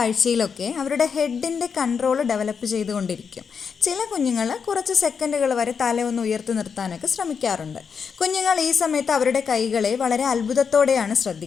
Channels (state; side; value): quieter; right; 6.3 dB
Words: അവരുടെ ഹെഡിൻ്റെ കൺട്രോൾ ഡെവലപ്പ് ചെയ്തുകൊണ്ടിരിക്കും. ചില കുഞ്ഞുങ്ങൾ കുറച്ച് സെക്കൻഡുകൾ വരെ തല ഒന്ന് ഉയർത്തി നിർത്താനൊക്കെ ശ്രമിക്കാറുണ്ട്. കുഞ്ഞുങ്ങൾ ഈ സമയത്ത് അവരുടെ കൈകളെ വളരെ അത്ഭുതത്തോടെയാണ്